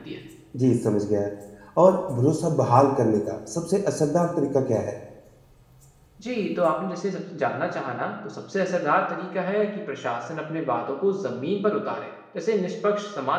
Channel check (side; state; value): both; identical; correlation 1.00